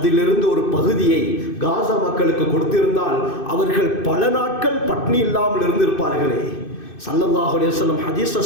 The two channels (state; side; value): late; right; 2.6 ms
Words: ஒரு பகுதியை காசா மக்களுக்கு கொடுத்திருந்தால் அவர்கள் பல நாட்கள் பட்னி இல்லாமல் இருந்திருப்பார்களே. ஸல்லல்லாஹு அலைஹி வஸல்லம் ஹதீஸ்ல